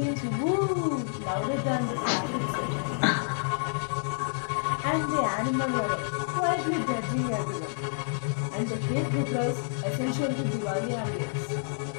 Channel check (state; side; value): silent; right; digital silence